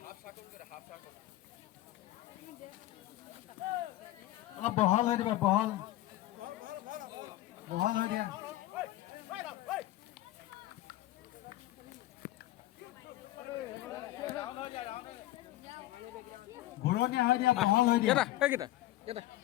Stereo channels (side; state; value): right; quieter; 15.9 dB